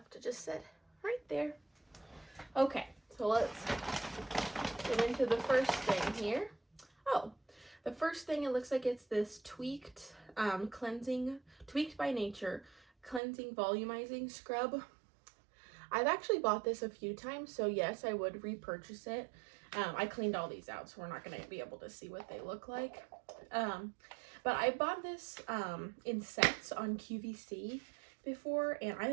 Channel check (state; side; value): drops out; left; at 13.2 s